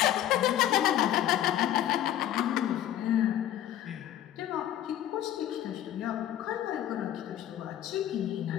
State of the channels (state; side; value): quieter; right; 12.1 dB